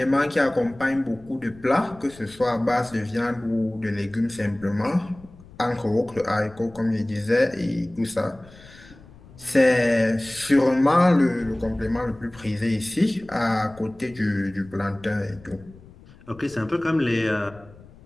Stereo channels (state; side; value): noise; left; rumble, 22 dB below the sound